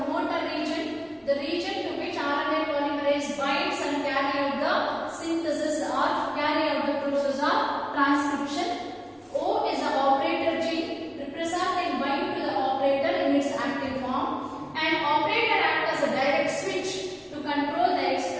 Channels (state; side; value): identical; both; correlation 1.00